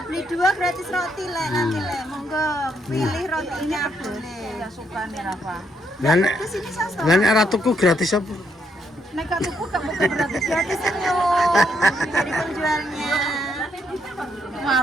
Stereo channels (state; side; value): normal; both; correlation 0.74